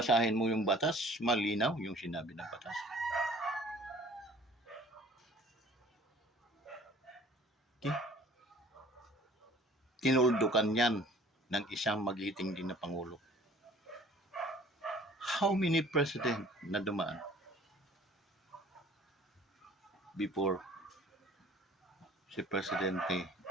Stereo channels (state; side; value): normal; both; correlation 0.51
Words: mo yung batas, malinaw yung sinabi ng batas. Okay? Tinuldukan yan ng isang magiting din na Pangulo. How many president na dumaan before si Presidente